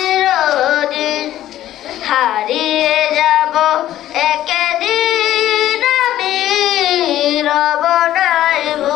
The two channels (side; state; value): right; quieter; 13.0 dB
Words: হারিয়ে যাব একদিন আমি, রব নাই